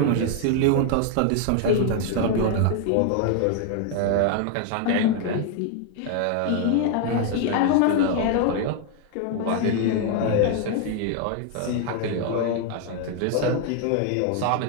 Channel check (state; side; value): different; both; correlation 0.00